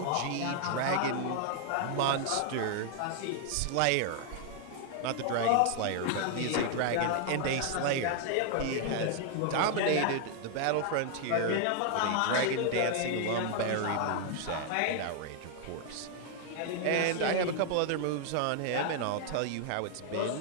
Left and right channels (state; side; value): different; both; correlation 0.00